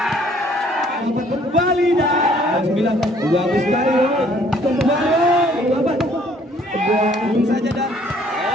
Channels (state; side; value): normal; both; correlation 0.60